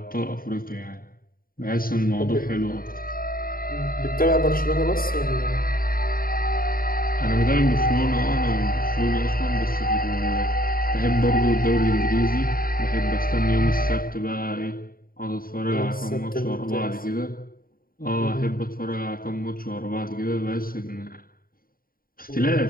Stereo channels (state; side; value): late; right; 0.42 ms